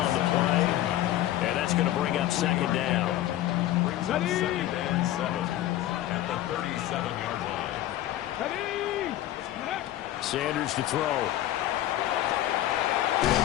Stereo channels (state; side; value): quieter; right; 13.9 dB